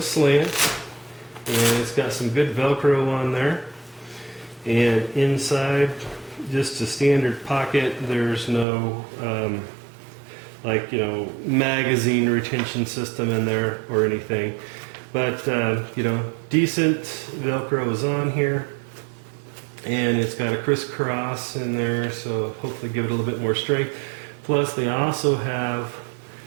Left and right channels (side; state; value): left; drops out; at 8.7 s